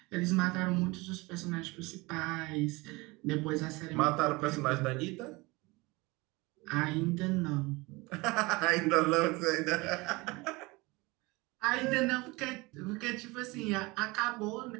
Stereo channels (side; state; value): left; quieter; 23.8 dB